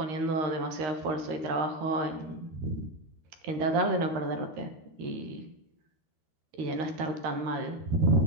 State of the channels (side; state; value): left; late; 13 ms